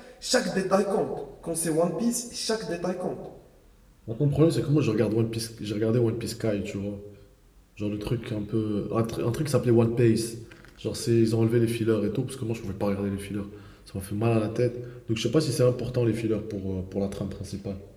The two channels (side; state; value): both; identical; correlation 1.00